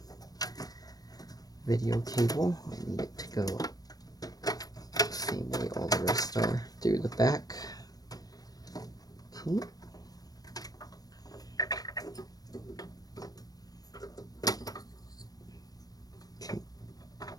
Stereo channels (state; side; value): late; right; 0.18 ms